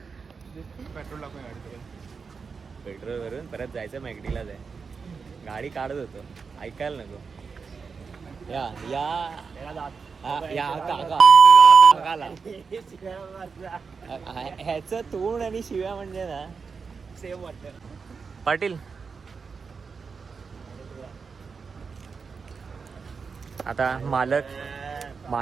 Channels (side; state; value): left; quieter; 5.3 dB